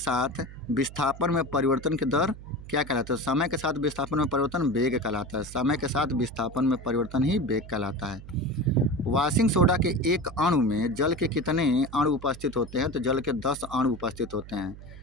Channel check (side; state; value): right; noise; hum, 15 dB below the sound